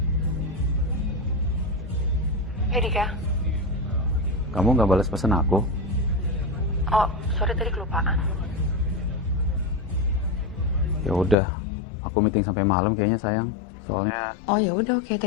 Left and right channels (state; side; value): drops out; right; at 11.4 s